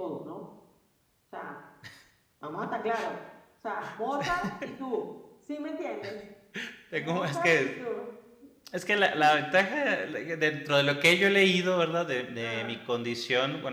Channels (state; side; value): identical; both; correlation 1.00